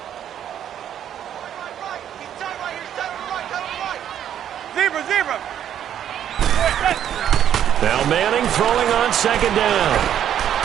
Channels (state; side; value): quieter; left; 10.0 dB